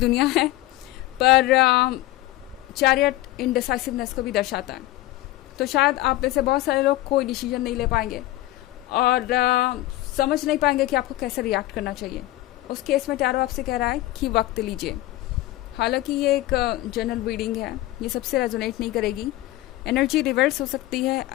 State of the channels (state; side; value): quieter; right; 16.8 dB